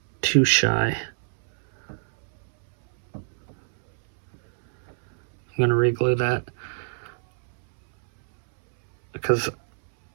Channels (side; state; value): left; silent; 62 dB below the other